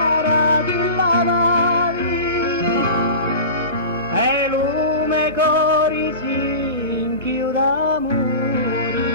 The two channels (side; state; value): both; inverted; correlation -0.32